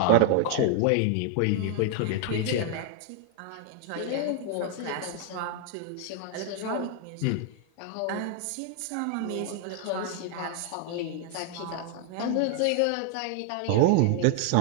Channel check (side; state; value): both; different; correlation 0.00